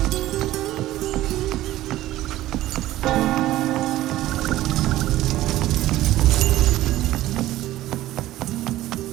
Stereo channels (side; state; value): left; quieter; 15.2 dB